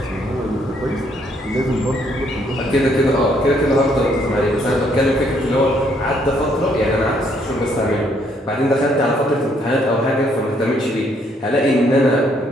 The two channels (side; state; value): both; normal; correlation 0.69